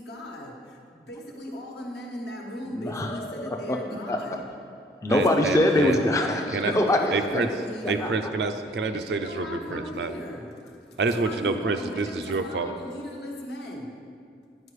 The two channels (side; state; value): both; normal; correlation 0.55